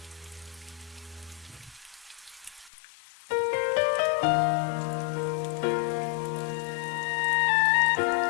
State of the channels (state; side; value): drops out; right; at 2.7 s